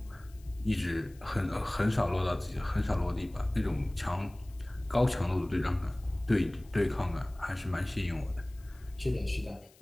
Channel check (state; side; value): noise; left; hiss, 28 dB below the sound